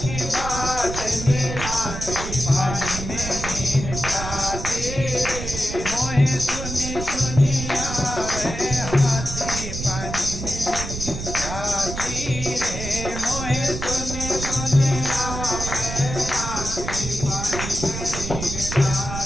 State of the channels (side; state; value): right; noise; rumble, 6 dB below the sound